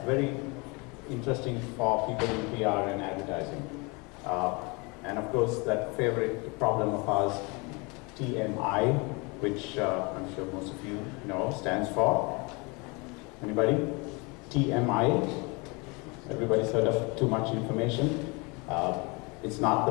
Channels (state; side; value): quieter; right; 28.7 dB